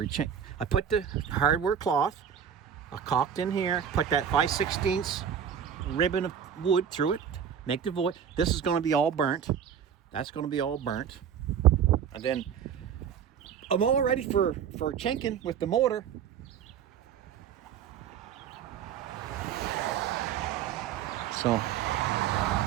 the hardware cloth, I caulked in here, put that 5/16 ribbon of wood through it, make the void. This is going to be all burnt. That's going to be all burnt. And then I'm all ready for chinking with the mortar. So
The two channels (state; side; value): quieter; left; 8.3 dB